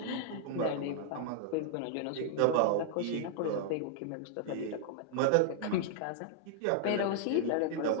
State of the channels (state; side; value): different; both; correlation -0.01